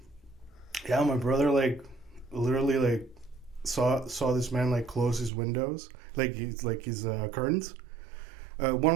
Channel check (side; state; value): left; drops out; at 5.3 s